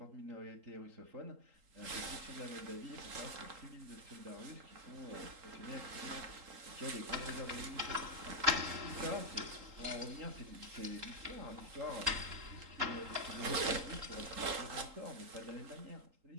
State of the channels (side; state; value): left; late; 3.8 ms